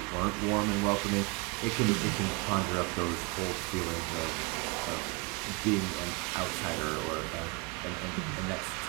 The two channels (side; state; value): left; quieter; 29.7 dB